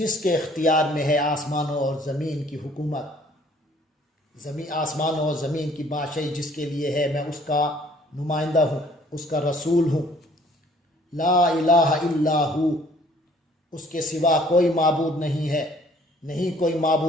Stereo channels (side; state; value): both; normal; correlation 0.58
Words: کے اختیار میں ہے آسمانوں اور زمین کی حکومت، آسمانوں اور زمین کی بادشاہی جس کے لیے ہے. میں اس کا نمائندہ ہوں، اس کا رسول ہوں. لا الہ الا ہو، اس کے سوا کوئی معبود نہیں ہے، نہیں کوئی